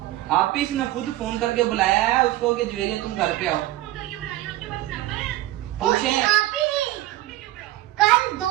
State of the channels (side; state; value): left; quieter; 16.1 dB